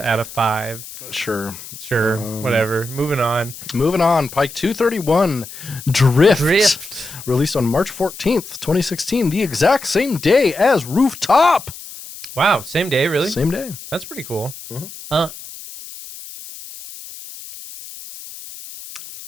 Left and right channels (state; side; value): noise; left; hiss, 14 dB below the sound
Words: of 5. Sure. Whatever. Moving on. Pike 231, Drift. Released on March 14th, 2016, the exact same day as Rooftop. Wow, same day, really? Same day. That's pretty cool. Uh-huh.